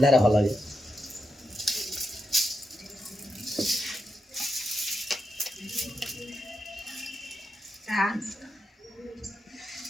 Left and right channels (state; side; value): normal; both; correlation 0.86